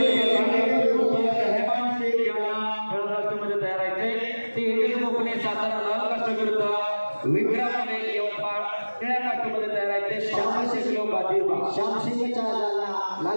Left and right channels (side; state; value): both; inverted; correlation -1.00